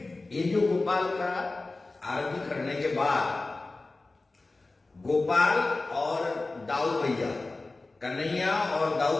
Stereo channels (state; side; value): quieter; right; 3.3 dB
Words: ये जो गोपाल का आरती करने के बाद गोपाल और दाऊ भैया, कन्हैया और